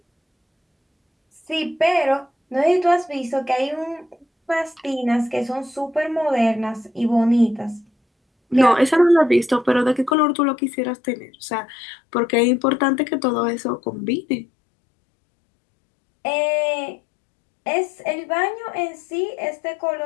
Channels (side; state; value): right; drops out; at 10.2 s